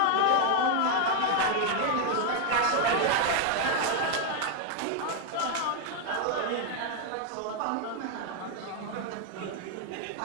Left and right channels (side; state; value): both; different; correlation 0.00